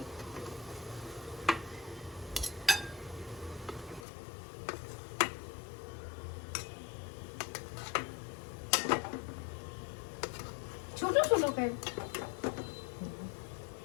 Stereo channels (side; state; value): right; drops out; at 4.0 s